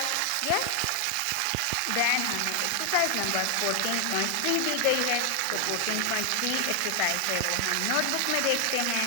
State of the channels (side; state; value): both; different; correlation 0.00